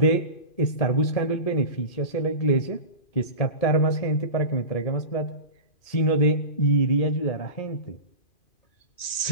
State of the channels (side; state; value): right; late; 2.4 ms